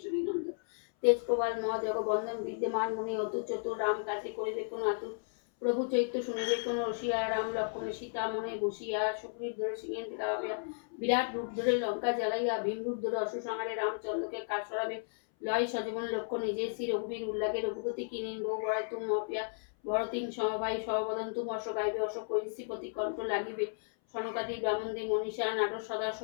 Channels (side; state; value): right; silent; 55 dB below the other